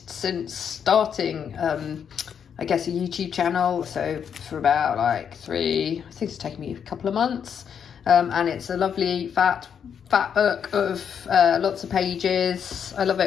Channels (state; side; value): quieter; right; 7.7 dB